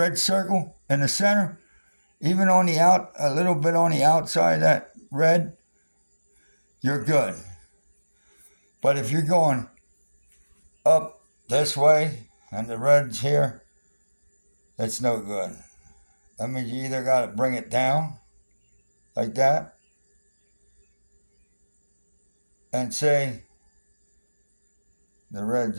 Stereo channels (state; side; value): inverted; both; correlation -1.00